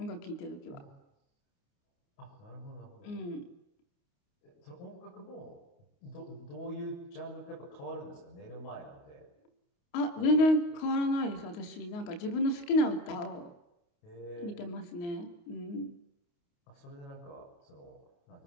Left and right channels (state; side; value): late; right; 29 ms